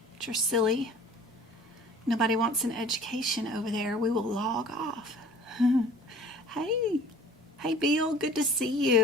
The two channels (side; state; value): both; normal; correlation 0.48